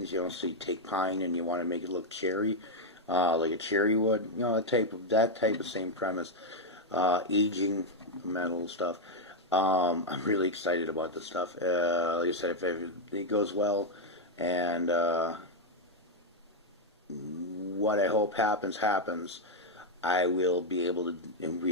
You know, so you take pine and you want to make it look cherry, like a cherry wood. You know, that type of same premise. Aging metal stuff. I'm really excited about this stuff. Like I said, if it goes well, and what I hope happens, I will be able to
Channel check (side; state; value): both; normal; correlation 0.01